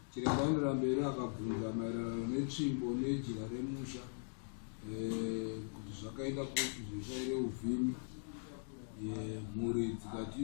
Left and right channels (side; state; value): right; silent; digital silence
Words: Chiremba anoenda mberi akabvunza maererano netsvimbo nejira remusha kuti zvakaita kuti zvishaire uvhimi. Mhuri dzikati